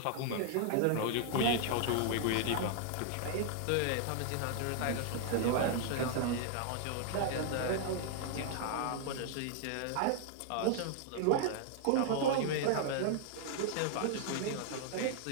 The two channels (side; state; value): both; different; correlation 0.00